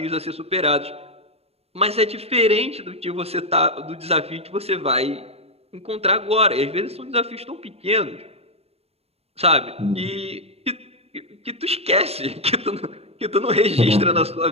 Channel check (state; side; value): late; left; 0.29 ms